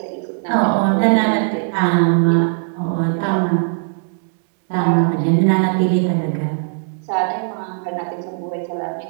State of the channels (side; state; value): left; silent; digital silence